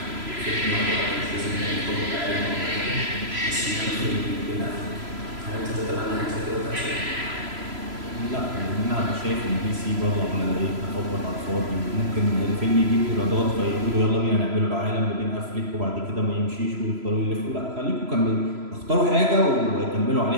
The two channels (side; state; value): left; late; 3.0 ms